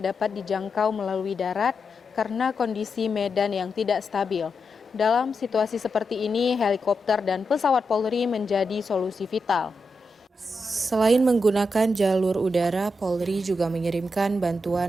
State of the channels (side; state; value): both; normal; correlation 0.86